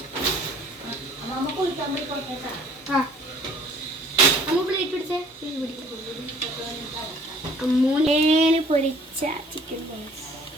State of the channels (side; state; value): both; normal; correlation 0.54